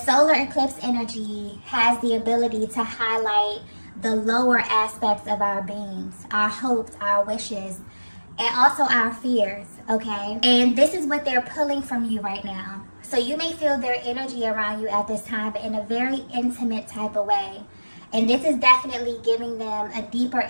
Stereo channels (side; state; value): both; inverted; correlation -1.00